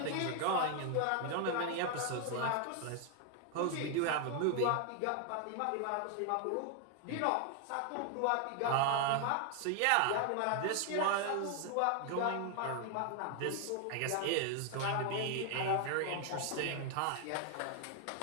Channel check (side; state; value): both; different; correlation 0.00